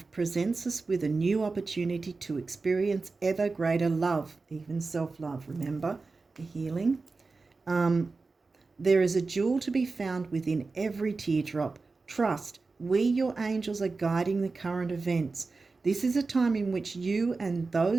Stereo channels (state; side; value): quieter; left; 4.0 dB